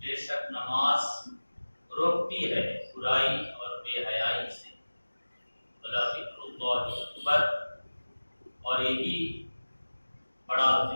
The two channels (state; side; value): inverted; both; correlation -1.00